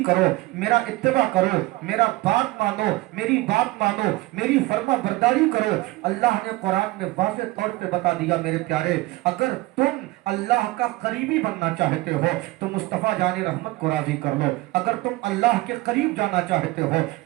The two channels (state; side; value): quieter; left; 19.8 dB